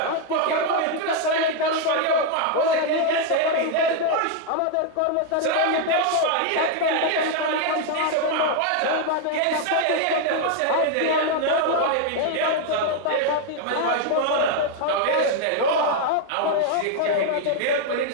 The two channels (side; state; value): both; different; correlation 0.01